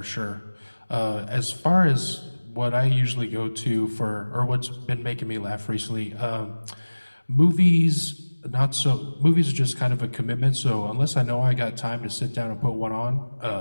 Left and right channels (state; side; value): inverted; both; correlation -1.00